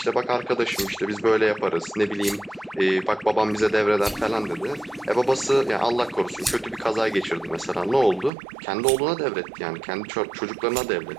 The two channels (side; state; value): left; drops out; at 8.3 s